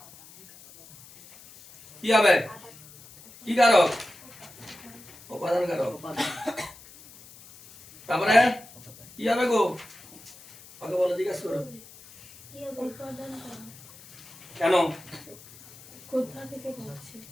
কি হবে? কি কারক? উপাদান কারক। তারপরে কি হবে গো? ওকে বলো, জিজ্ঞাসা করো কেন?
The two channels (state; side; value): noise; left; hiss, 21 dB below the sound